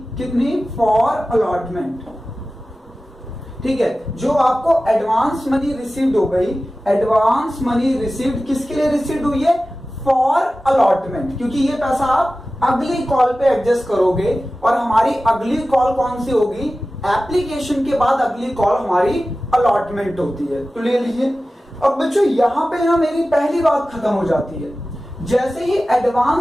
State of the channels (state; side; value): normal; both; correlation 0.96